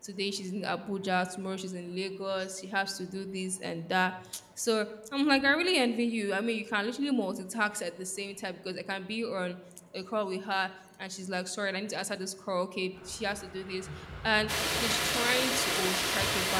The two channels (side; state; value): both; identical; correlation 1.00